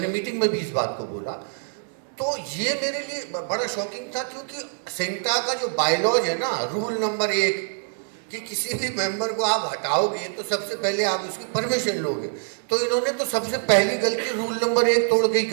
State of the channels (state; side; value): silent; left; 59 dB below the other